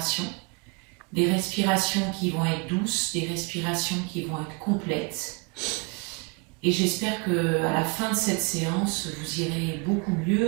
des respirations qui vont être douces, des respirations qui vont être complètes. Et j'espère qu'à la fin de cette séance, vous irez beaucoup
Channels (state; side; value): quieter; left; 31.0 dB